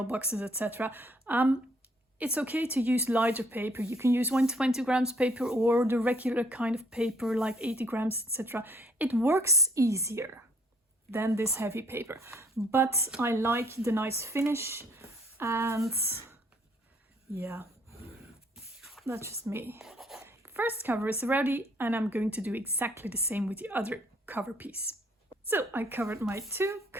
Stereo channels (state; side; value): normal; both; correlation 0.64